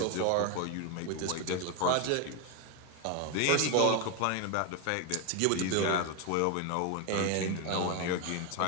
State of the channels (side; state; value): both; different; correlation 0.01